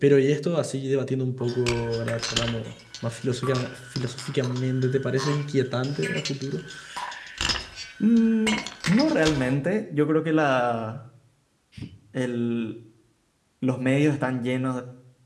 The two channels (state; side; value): identical; both; correlation 1.00